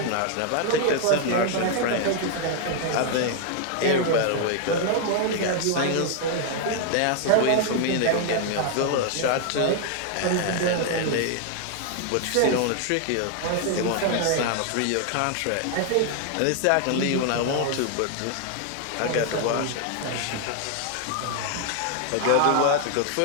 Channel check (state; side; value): different; both; correlation 0.00